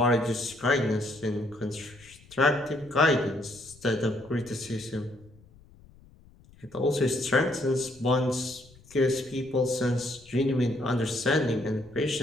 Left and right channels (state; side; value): noise; left; rumble, 25 dB below the sound